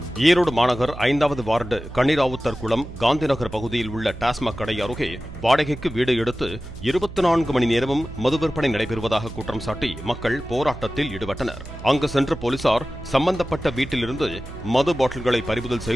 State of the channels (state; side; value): noise; right; hum, 13 dB below the sound